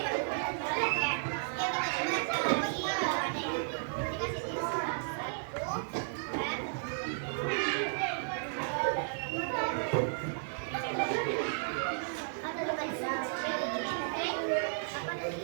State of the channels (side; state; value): left; silent; digital silence